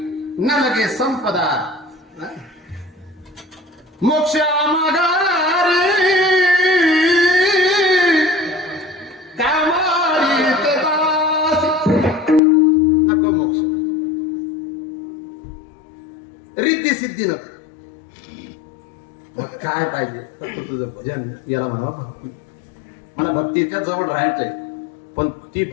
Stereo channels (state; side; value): drops out; right; at 12.4 s